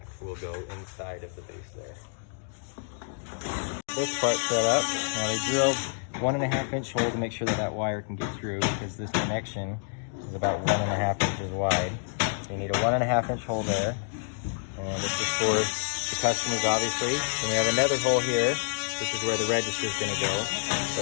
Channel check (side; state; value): right; silent; digital silence